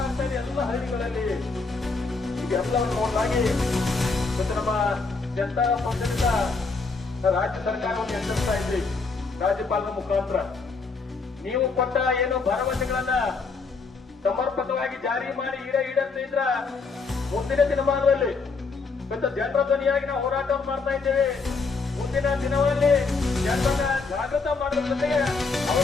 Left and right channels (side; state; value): right; quieter; 4.3 dB